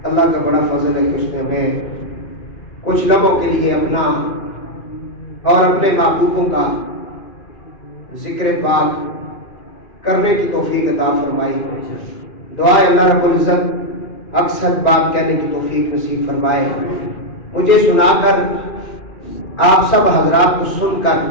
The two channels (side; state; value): right; late; 2.4 ms